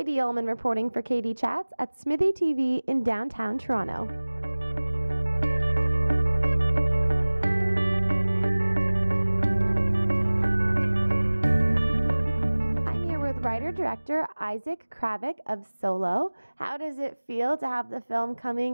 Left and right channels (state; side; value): inverted; both; correlation -1.00